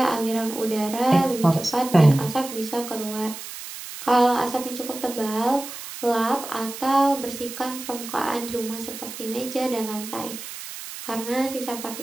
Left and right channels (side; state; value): right; noise; hiss, 11 dB below the sound